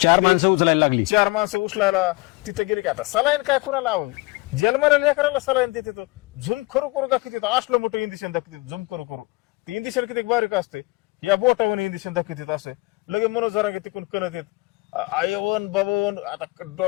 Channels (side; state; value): right; quieter; 23.6 dB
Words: 4 माणसं उचलायला लागली. 4 माणसं उचलायला तिथं गेली की आता सलाईन काय कुणाला जन्माला लेकराला सलाईन देते तो झूम करू दाखवते. असलं मोठं इंजेक्शन दाखवते झूम करू. ते इंजेक्शन किती बारीक असते. या बोटावर इंजेक्शन दाखवते असं लगे मनोज जरांगे तिकून कणत येत आयवन बाबवन. आता